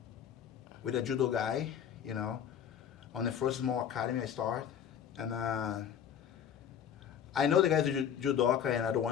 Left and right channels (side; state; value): right; quieter; 8.8 dB